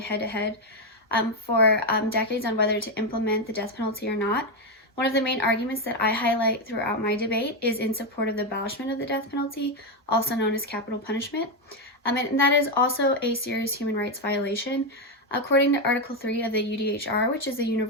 for decades on whether to implement the death penalty or not. One of the main arguments that I highlight throughout my debate is in support of the abolishment of the death penalty, also known as capital punishment, and that is also a serious human rights violation. According to Article 3 of the UDHR, which is the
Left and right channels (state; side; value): normal; both; correlation 0.06